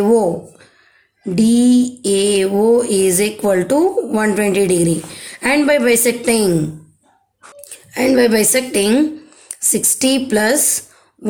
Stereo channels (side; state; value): both; identical; correlation 1.00